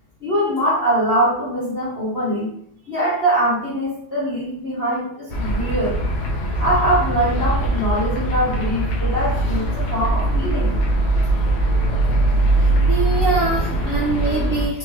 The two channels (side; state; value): both; normal; correlation 0.28